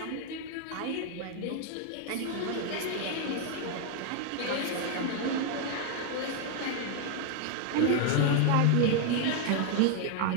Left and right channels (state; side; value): different; both; correlation 0.00